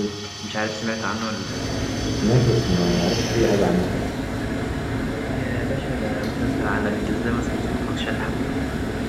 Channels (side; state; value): both; identical; correlation 1.00